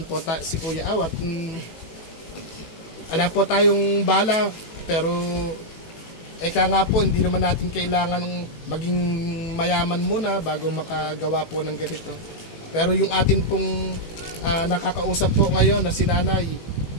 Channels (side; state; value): right; late; 18 ms